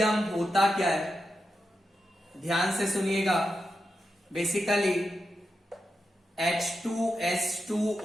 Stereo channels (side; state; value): both; normal; correlation 0.88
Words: होता क्या है, ध्यान से सुनिएगा। बेसिकली